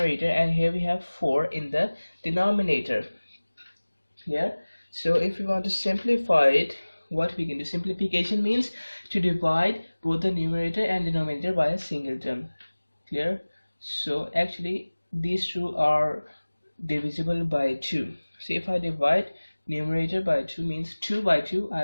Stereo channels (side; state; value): both; inverted; correlation -1.00